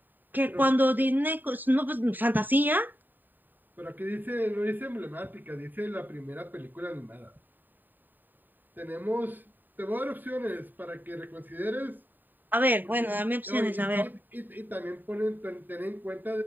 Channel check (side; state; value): left; late; 0.090 ms